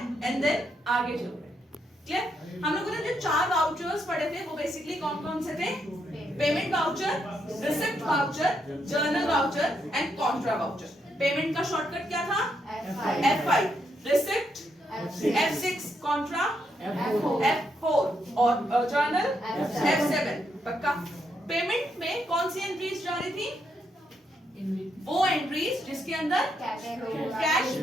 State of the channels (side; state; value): both; normal; correlation 0.78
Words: एंड देन आगे चल रहे हैं। क्लियर? हम लोगों ने जो 4 वाउचर्स पढ़े थे वो बेसिकली कौन कौन से थे? Payment voucher, receipt voucher, journal voucher and Contra voucher. Payment का शॉर्टकट क्या था? F5, receipt F6, Contra F4 और जर्नल F7। पक्का? पेमेंट में कौन सी एंट्रीज जा रही थी? वो एंट्रीज जिसके अंदर कैश